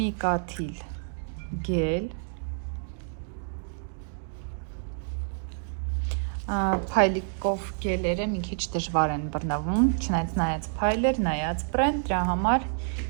կաթիլ գել, փայլիկով գելերը մի քիչ դժվար են բռնվում, չնայած նայած փայլեր, նայած բրենդ, դրա համար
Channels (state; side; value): silent; left; digital silence